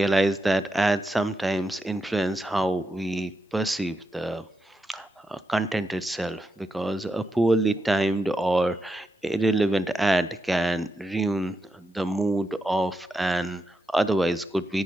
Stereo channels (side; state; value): both; normal; correlation 0.85